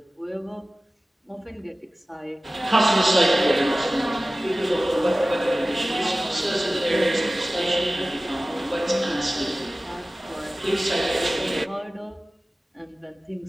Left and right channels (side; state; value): both; normal; correlation 0.97